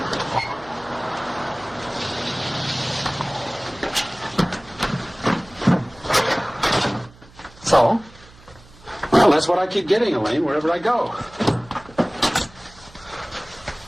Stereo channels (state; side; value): noise; right; hum, 24 dB below the sound